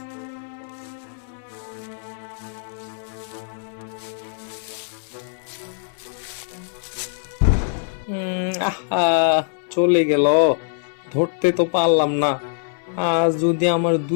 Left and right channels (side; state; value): right; silent; 59 dB below the other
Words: আহা, চলে গেল, ধরতে তো পারলাম না। আর যদি আমার